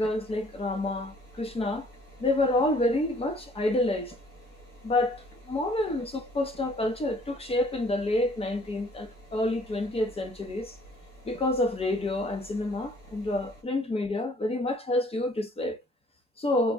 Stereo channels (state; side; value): normal; both; correlation 0.59